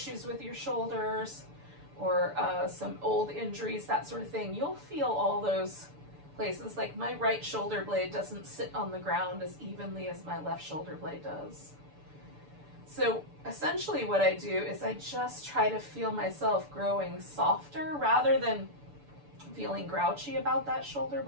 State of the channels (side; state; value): left; late; 6.9 ms